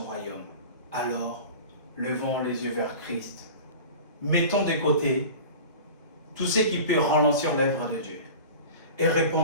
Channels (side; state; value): both; inverted; correlation -0.36